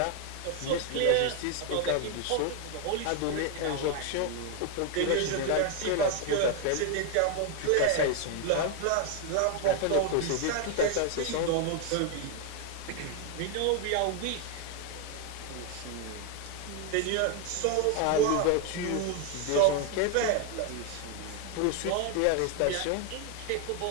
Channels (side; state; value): both; different; correlation 0.01